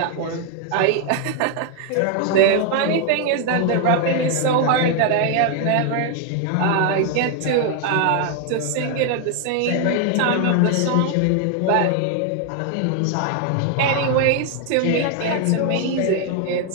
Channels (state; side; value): different; both; correlation 0.00